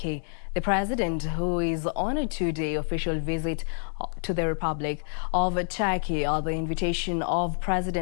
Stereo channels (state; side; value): silent; right; digital silence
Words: The president, who is on a two-day official visit to the Republic of Turkey at the invitation of